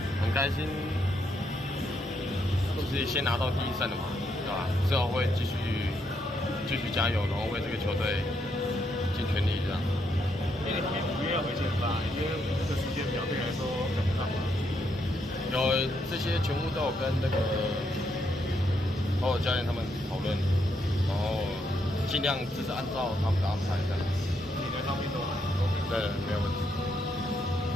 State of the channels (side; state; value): both; normal; correlation 0.77